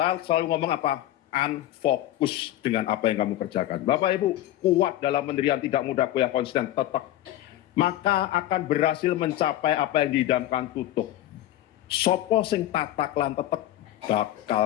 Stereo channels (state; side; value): quieter; right; 13.8 dB